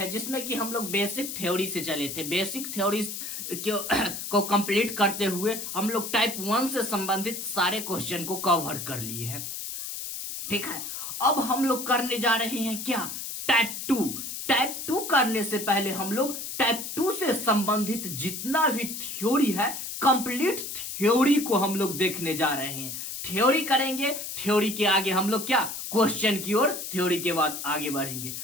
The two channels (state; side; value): noise; left; hiss, 6 dB below the sound